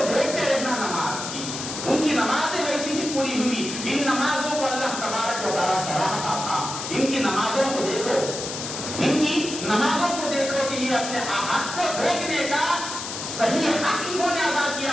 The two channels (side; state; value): left; noise; hiss, 7 dB below the sound